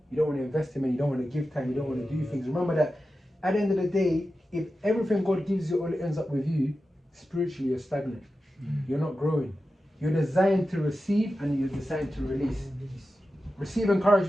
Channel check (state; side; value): normal; both; correlation 0.92